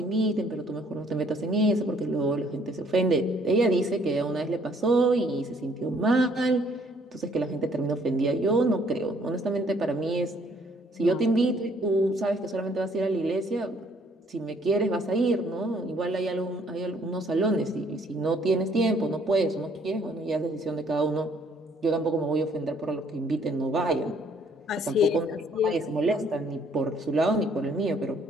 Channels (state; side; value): normal; both; correlation 0.63